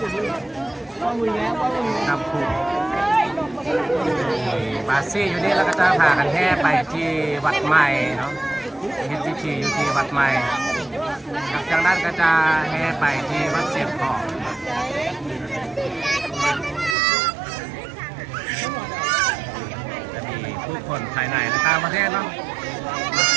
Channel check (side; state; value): left; drops out; at 16.9 s